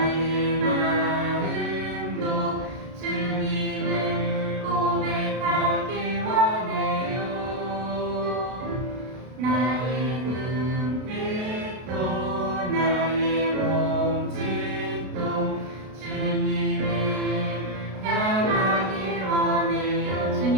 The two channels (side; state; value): left; late; 32 ms